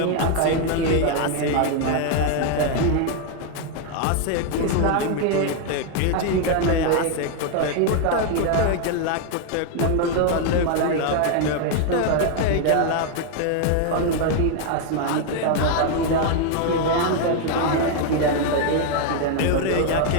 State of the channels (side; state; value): both; different; correlation 0.00